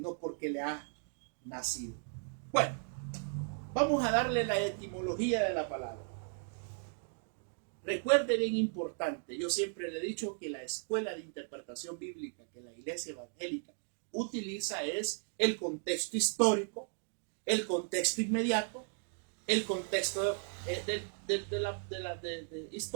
porque le ha nacido. Bueno, vamos a darle la etimología de la palabra. Recuerde, bien importante, yo siempre le he dicho que la escuela de interpretación bíblica que la Iglesia Evangélica utiliza es el contexto histórico, el contexto inmediato, el contexto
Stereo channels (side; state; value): left; silent; 54 dB below the other